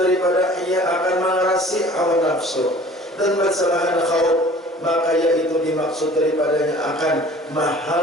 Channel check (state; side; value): normal; both; correlation 0.48